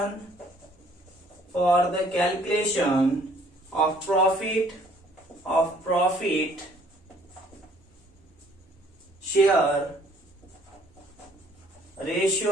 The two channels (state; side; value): normal; both; correlation 0.59